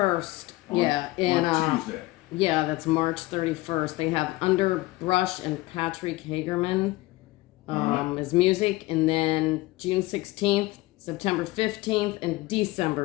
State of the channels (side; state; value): right; quieter; 19.9 dB